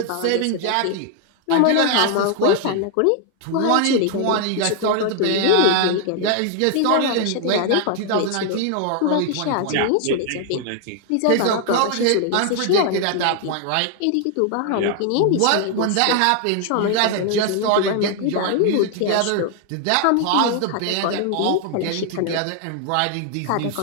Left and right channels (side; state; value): both; different; correlation 0.00